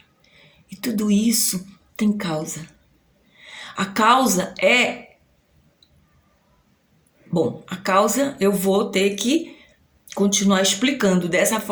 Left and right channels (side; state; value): both; identical; correlation 1.00